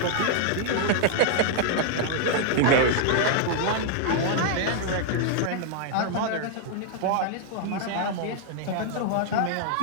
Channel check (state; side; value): different; both; correlation 0.00